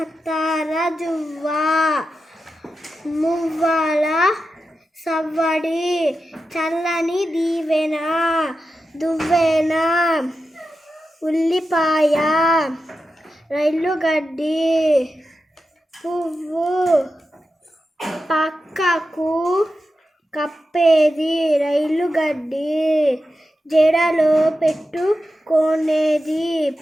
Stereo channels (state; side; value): normal; both; correlation 0.91